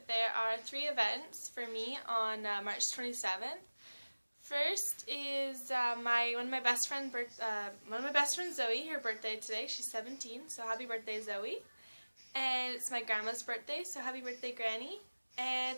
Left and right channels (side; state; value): both; inverted; correlation -1.00